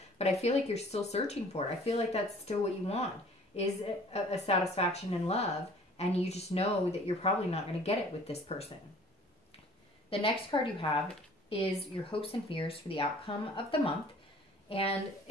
but I feel like you're still searching for it. I feel like that's still what you want, is a satisfaction and love. And you just know that you're probably not going to get it with this person. The next card you have is your hopes and fears for the outcome of the month. And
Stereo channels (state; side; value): normal; both; correlation 0.51